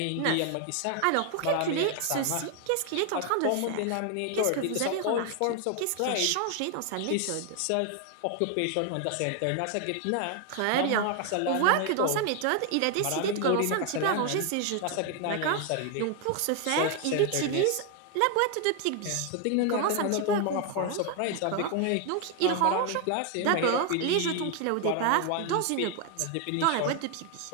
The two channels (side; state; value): both; different; correlation 0.00